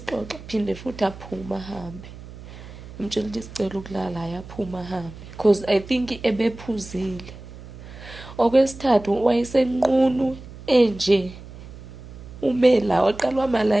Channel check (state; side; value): noise; right; hum, 15 dB below the sound